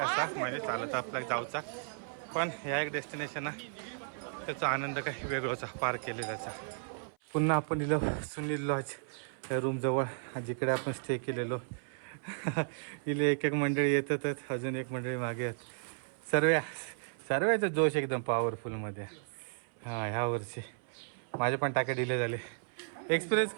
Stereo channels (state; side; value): silent; left; 55 dB below the other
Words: म्हणजे चालत आपल्याला जाऊचा. पण ह्या एक डेस्टिनेशन आहे, त्याचा आनंद काही वेगळाचा पार केलेलाचा. पुन्हा आपण इलो सुनील लॉज या रूमजवळ, जिकडे आपण स्टे केलेलो. इले एक मंडळी येतातच, अजून एक मंडळी मागे आहेत. सर्वांचा जोश एकदम पॉवरफुलमध्ये. हां ह्या वर्षी माझे पण टाके डिले झाले. एक्सपिरियन्स